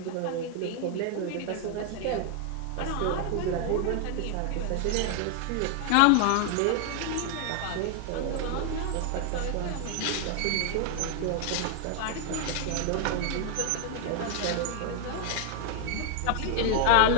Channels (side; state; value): both; different; correlation 0.00